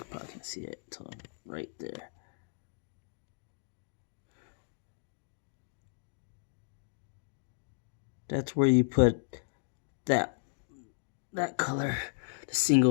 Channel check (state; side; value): silent; right; digital silence